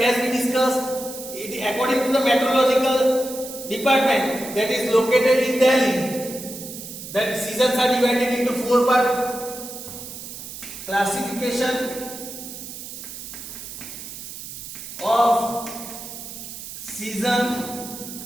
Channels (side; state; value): right; noise; hiss, 11 dB below the sound